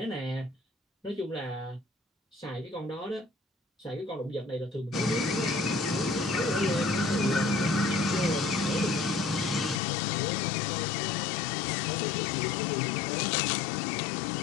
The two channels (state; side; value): drops out; right; at 9.8 s